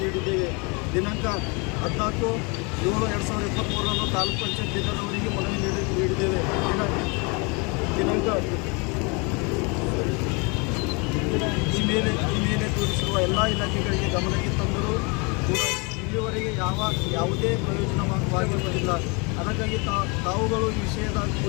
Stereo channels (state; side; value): quieter; right; 30.7 dB